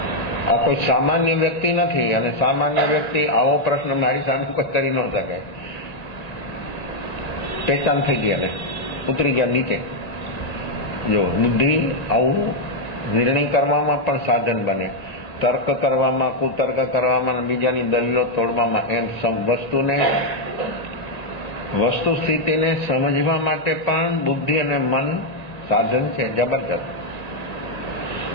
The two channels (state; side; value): late; right; 1.9 ms